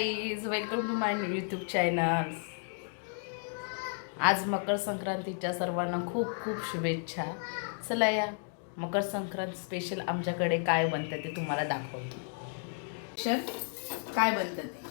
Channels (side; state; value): right; silent; 56 dB below the other